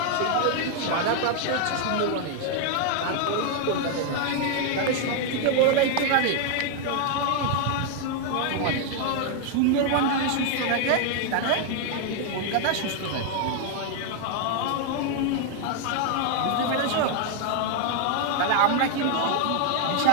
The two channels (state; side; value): different; both; correlation 0.00